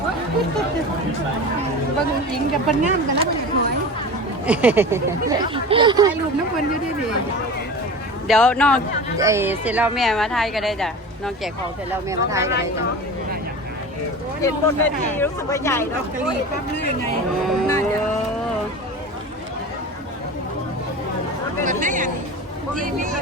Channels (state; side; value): normal; both; correlation 0.32